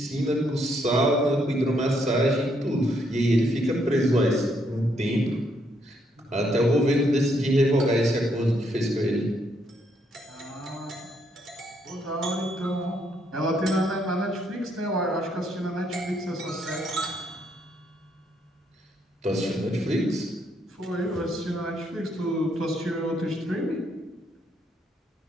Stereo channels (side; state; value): both; normal; correlation 0.74